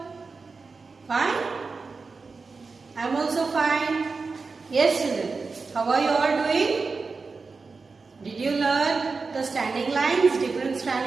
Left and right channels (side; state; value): left; quieter; 4.4 dB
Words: Fine? I am also fine. Yes, children. How are you all doing? Did you learn the standing lines, different